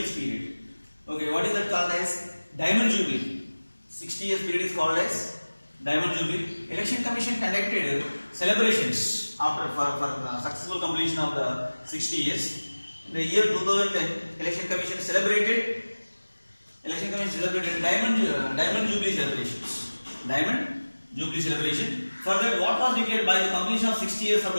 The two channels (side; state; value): both; inverted; correlation -1.00